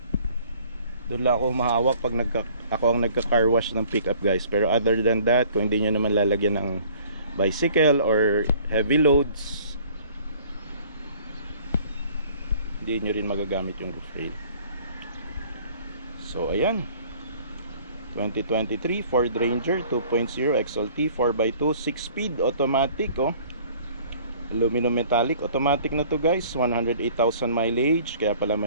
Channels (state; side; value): inverted; both; correlation -0.53